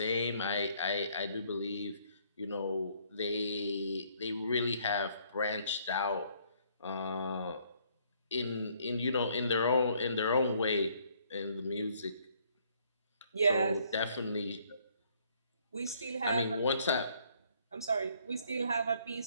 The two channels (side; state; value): both; inverted; correlation -0.65